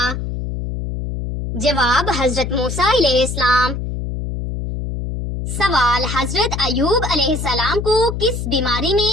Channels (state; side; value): noise; left; hum, 4 dB below the sound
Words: جواب: حضرت موسیٰ علیہ السلام۔ سوال: حضرت ایوب علیہ السلام کو کس بیماری میں